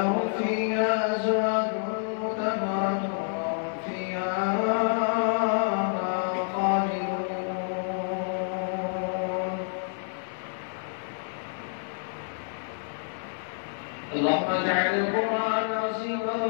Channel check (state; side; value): silent; right; digital silence